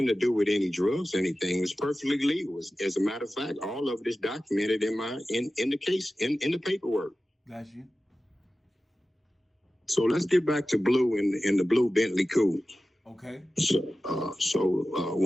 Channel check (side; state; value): both; normal; correlation 0.95